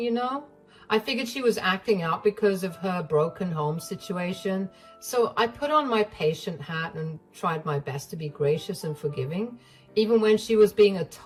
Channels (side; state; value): both; identical; correlation 1.00